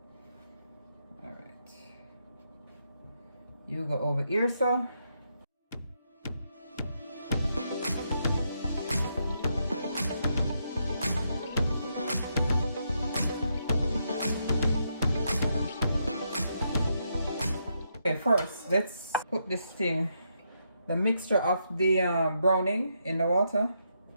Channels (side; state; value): both; inverted; correlation -0.80